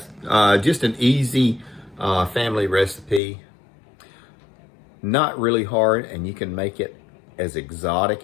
Just an easy family recipe. Not really hard, and you can make it as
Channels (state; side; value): drops out; right; at 3.2 s